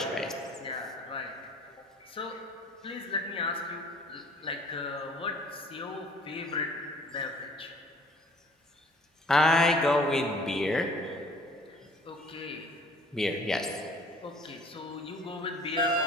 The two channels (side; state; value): both; normal; correlation 0.53